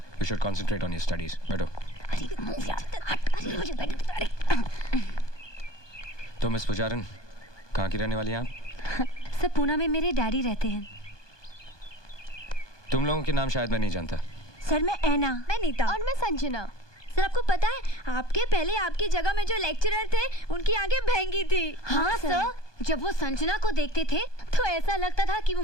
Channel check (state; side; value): late; right; 1.2 ms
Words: you should concentrate on your studies. बैठो। तो मिस पुजारन, कहाँ की रहने वाली हैं आप? सर पूना में मेरे डैडी रहते हैं। तुम लोगों के नाम शायद मैं नहीं जानता। सर मैं ऐना। मैं नीता। और मैं संजना। सर आपको पता है, आपके पहले आपकी जगह में जो लेक्चरर थे उनकी आंखें भैंगी थी। हाँ सर, जब वो संजना को देखते थे तो ऐसा लगता था कि वो